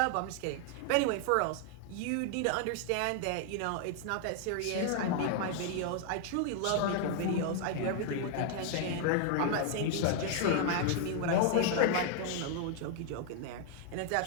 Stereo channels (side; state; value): both; different; correlation 0.00